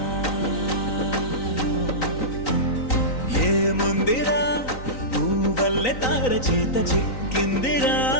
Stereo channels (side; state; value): right; late; 3.9 ms